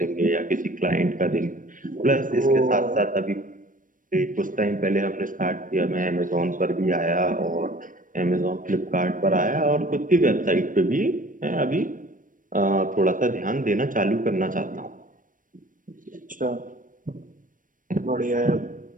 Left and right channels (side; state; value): left; late; 0.39 ms